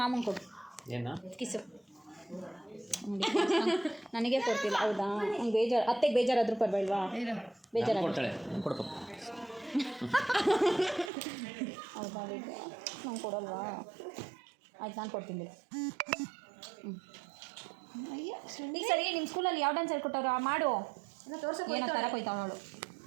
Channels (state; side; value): drops out; left; at 11.1 s